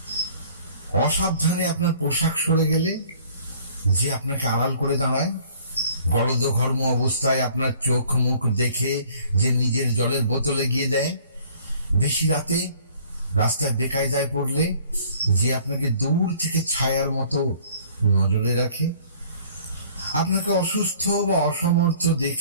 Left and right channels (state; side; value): inverted; both; correlation -0.54